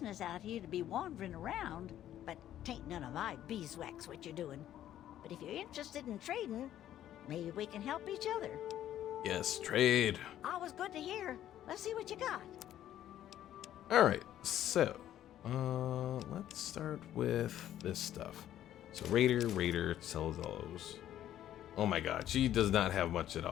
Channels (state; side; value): quieter; right; 11.9 dB